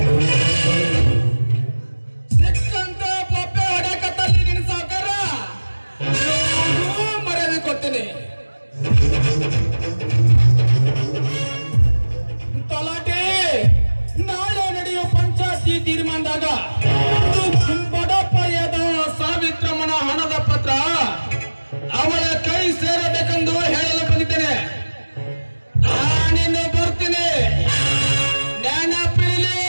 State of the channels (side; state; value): both; inverted; correlation -1.00